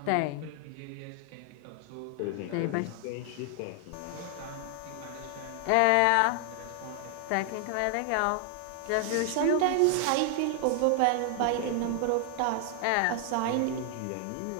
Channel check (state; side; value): different; both; correlation 0.00